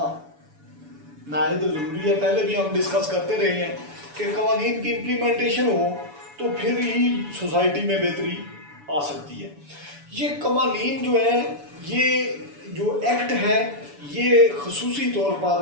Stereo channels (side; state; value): left; late; 7.0 ms